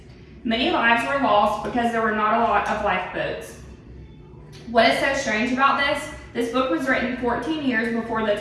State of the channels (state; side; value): identical; both; correlation 1.00